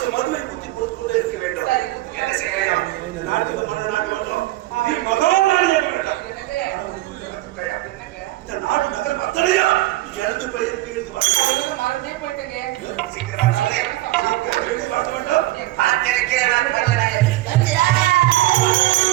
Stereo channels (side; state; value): left; quieter; 17.1 dB